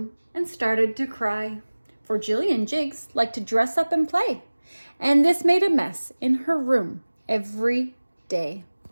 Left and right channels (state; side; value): inverted; both; correlation -1.00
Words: and started to cry. For Jillian Jiggs liked to dress up and play, and this made a mess in her room every day.